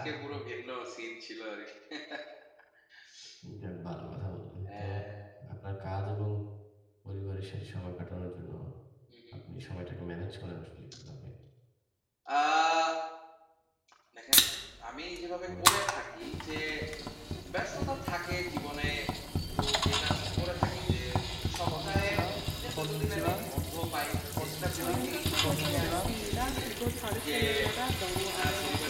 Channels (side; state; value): both; identical; correlation 1.00